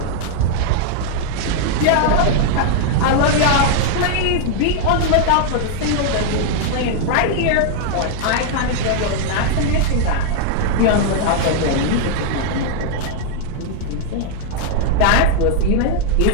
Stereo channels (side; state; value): both; different; correlation 0.00